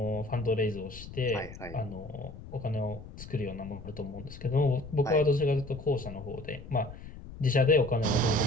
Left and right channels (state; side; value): noise; left; rumble, 14 dB below the sound